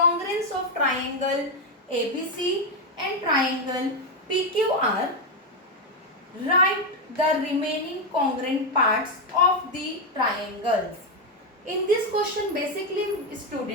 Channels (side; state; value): both; normal; correlation 0.05